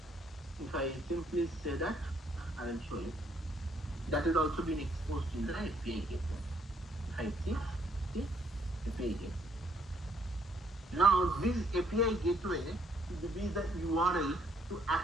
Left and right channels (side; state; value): both; normal; correlation 0.67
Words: If I simply say that, I will show you. That is also being exposed in the API gateway. If I see API gateway. Now this API gateway will be the URL to